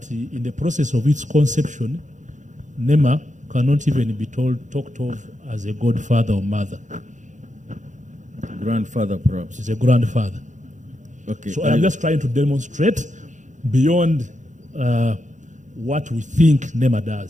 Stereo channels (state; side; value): late; left; 0.36 ms